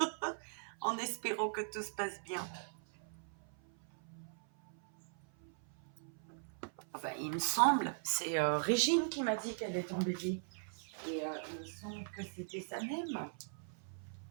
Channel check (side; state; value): left; silent; 51 dB below the other